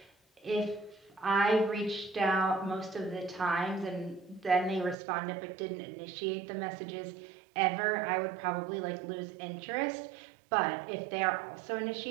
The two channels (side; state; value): left; drops out; at 5.0 s